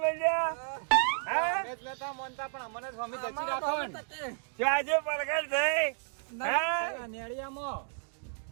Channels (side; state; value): left; silent; 56 dB below the other